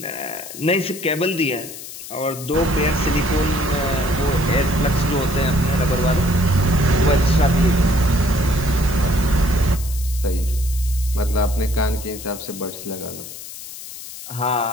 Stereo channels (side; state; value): left; noise; hiss, 12 dB below the sound